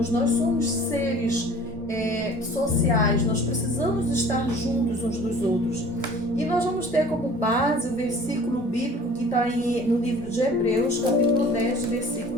somos seres sociais, nós precisamos estar juntos uns dos outros. E nós vamos ter como base o versículo bíblico que está no livro de Hebreus, capítulo 10,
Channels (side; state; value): both; normal; correlation 0.47